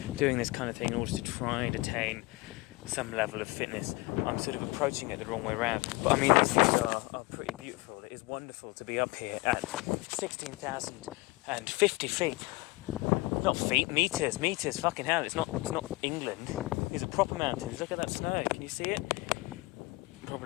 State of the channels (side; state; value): right; quieter; 22.7 dB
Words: doing this kind of thing in order to try and attain some level of fitness. I'm sort of approaching it the wrong way around. But I mean, these views are pretty beautiful. It is wonderful to be up here at 16,050 feet. Not feet, meters, fucking hell, it's not England. These are proper mountains. Look at that snow, can you see it?